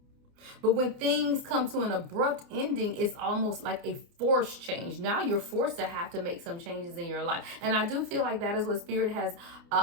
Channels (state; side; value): late; left; 29 ms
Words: But when things come to an abrupt ending, it's almost like a forced change. Now you're forced to have to make some changes in your life. And I do feel like that is what Spirit has